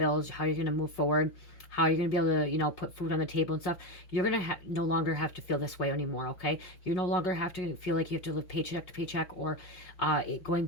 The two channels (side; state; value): right; late; 5.7 ms